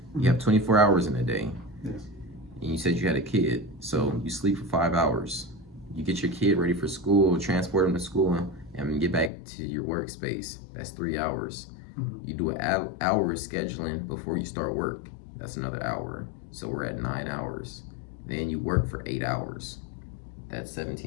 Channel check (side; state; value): right; drops out; at 9.3 s